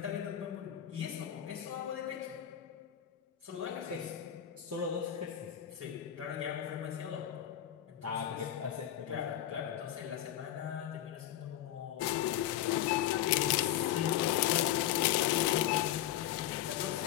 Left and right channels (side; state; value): right; quieter; 11.9 dB